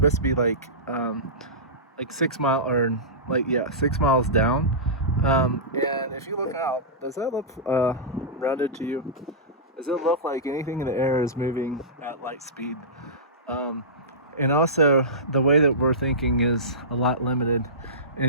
to be like 6 mile or like yeah 6 miles down. And if you look out, does that look rounded to you? Does it look like anything in the air is moving at light speed? Um, and also the way that we're thinking is a lot limited,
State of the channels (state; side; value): normal; both; correlation -0.20